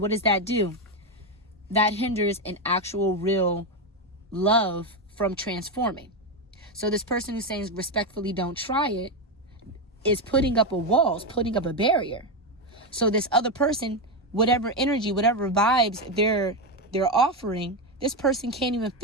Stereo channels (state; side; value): normal; both; correlation 0.09